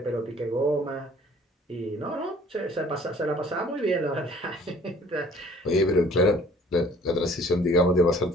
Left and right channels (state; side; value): normal; both; correlation 0.54